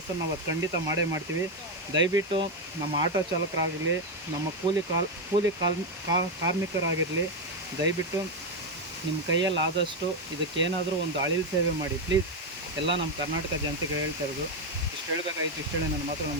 ನಾವು ಅದು ಖಂಡಿತ ಮಾಡೇ ಮಾಡ್ತೀವಿ. ದಯವಿಟ್ಟು ನಮ್ಮ ಆಟೋ ಚಾಲಕರಾಗಿರಲಿ, ನಮ್ಮ ಕೂಲಿ ಕಾರ್ಮಿಕರಾಗಿರಲಿ, ದಯವಿಟ್ಟು ನಿಮ್ಮ ಕೈಯಲ್ಲಿ ಆದಷ್ಟು ಇದಕ್ಕೇನಾದರೂ ಒಂದು ಅಳಿಲು ಸೇವೆ ಮಾಡಿ ಪ್ಲೀಸ್. ಎಲ್ಲ ನಮ್ಮ ಕರ್ನಾಟಕ ಜನತೆಗೆ ಹೇಳ್ತಾ ಇರೋದು. ಇಷ್ಟು ಹೇಳಬೇಕಾಗಿತ್ತು. ಇಷ್ಟು ಹೇಳಿ ನನ್ನ ಮಾತ್ರ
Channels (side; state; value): both; normal; correlation 0.06